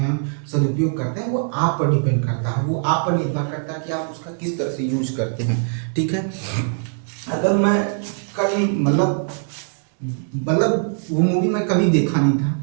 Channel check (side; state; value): left; silent; 65 dB below the other